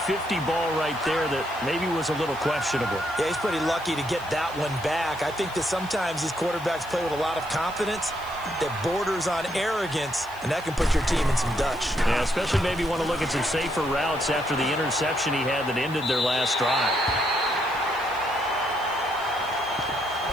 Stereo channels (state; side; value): noise; left; hiss, 22 dB below the sound